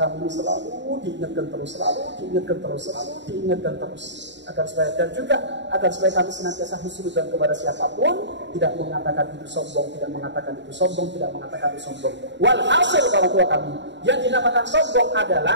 ini selalu diingatkan terus, agar supaya kami senantiasa husnudzon kepada siapapun, tidak mengatakan itu sombong, tidak mengatakan itu sombong. Walhasil orang tua kami, yang dinamakan sombong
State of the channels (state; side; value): late; left; 0.52 ms